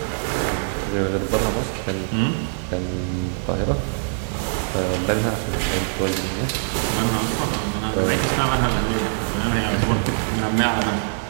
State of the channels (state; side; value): silent; left; digital silence